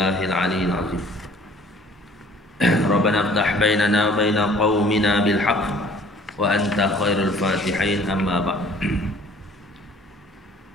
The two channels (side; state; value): both; normal; correlation 0.53